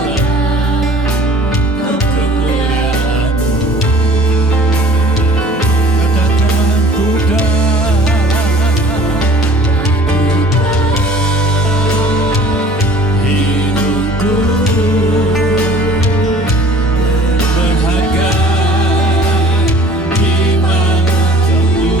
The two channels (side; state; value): both; normal; correlation 0.50